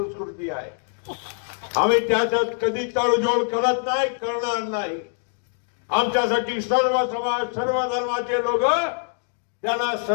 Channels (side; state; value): right; silent; 63 dB below the other